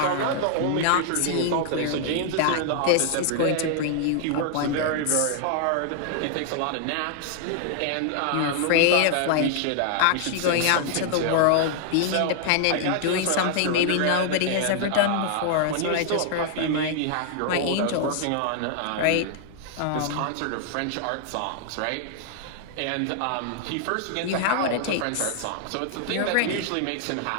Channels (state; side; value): different; both; correlation 0.00